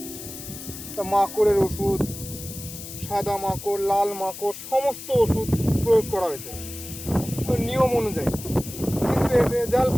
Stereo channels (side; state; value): left; noise; hiss, 11 dB below the sound